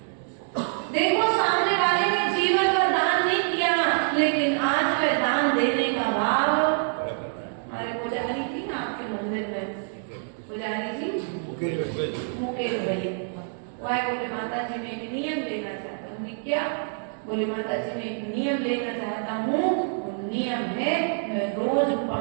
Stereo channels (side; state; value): left; silent; 61 dB below the other